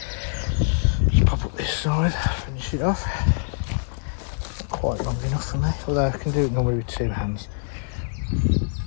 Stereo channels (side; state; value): right; silent; 62 dB below the other